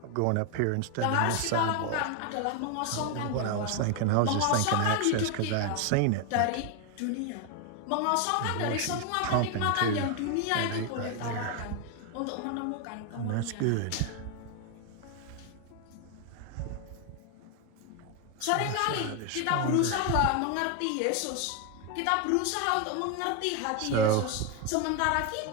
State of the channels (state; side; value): different; both; correlation 0.01